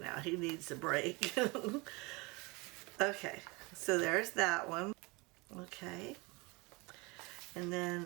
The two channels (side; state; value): left; quieter; 26.4 dB